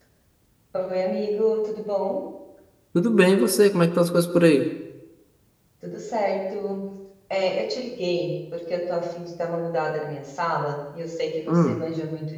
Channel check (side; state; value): both; identical; correlation 1.00